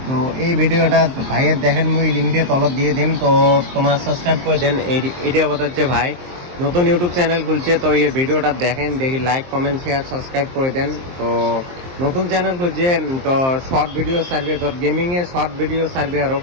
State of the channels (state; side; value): late; left; 23 ms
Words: তো এই ভিডিওটা ভাইয়ের দেখেন, মুই লিঙ্কটা তলত দিয়ে দিম, তো তোমার সাবস্ক্রাইব করে দেন। এটা হচ্ছে ভাই নতুন ইউটিউব চ্যানেল খুলছে, তো এই ভিডিওটা দেখেন, দেখি লাইক কমেন্ট শেয়ার সাবস্ক্রাইব করে দেন। তো নতুন চ্যানেল খুলছে, তো শর্ট ভিডিও সার্ভে, তোর গেমিং এর শর্ট ভিডিও সার্ভে আরও